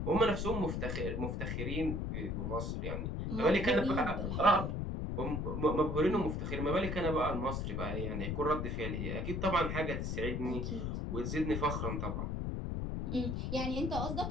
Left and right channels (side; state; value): left; noise; rumble, 2 dB below the sound